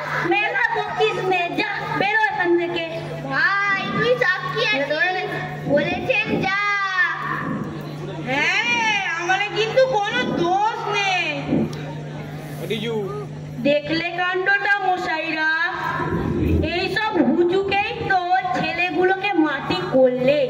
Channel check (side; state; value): both; identical; correlation 1.00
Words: মেলা বকিস নে, যা বেরো এখান থেকে। ভাই তুই সাক্ষী আছিস, বলেছেন যা। হ্যাঁ, আমার কিন্তু কোনো দোষ নেই। দেখলে কাণ্ডটা মশাইরা? এইসব হুজুকেই তো ছেলেগুলোকে মাটি করলে।